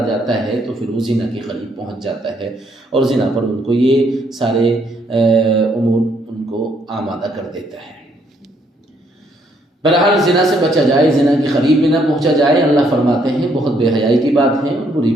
جاتا ہے تو پھر وہ زنا کے قریب پہنچ جاتا ہے، اور زنا پر ان کو یہ سارے امور ان کو آمادہ کر دیتا ہے۔ بہرحال زنا سے بچا جائے، زنا کے قریب بھی نہ پہنچا جائے۔ اللہ فرماتے ہیں بہت بے حیائی کی بات ہے اور بری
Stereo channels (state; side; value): normal; both; correlation 0.70